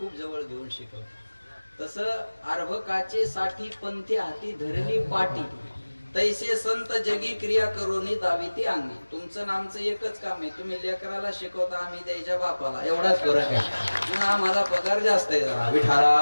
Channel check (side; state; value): both; inverted; correlation -1.00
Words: जवळ घेऊन शिकवतो. तसं अर्भकाचे साठी पंथी हाती धरली पाटी, तैसे संत जगी क्रिया करोनी दाविती अंगी. तुमचं नामचं एकच काम आहे, तुम्ही लेकराला शिकवता, आम्ही द्यायच्या बापाला. एवढाच फरक आहे. पण आम्हाला पगार जास्त आहे जरा.